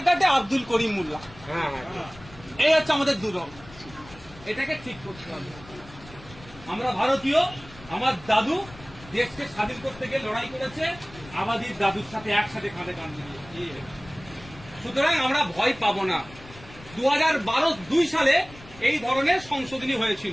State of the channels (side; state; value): left; noise; rumble, 20 dB below the sound